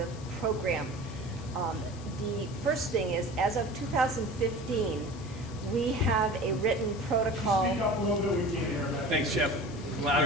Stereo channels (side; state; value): left; noise; hiss, 20 dB below the sound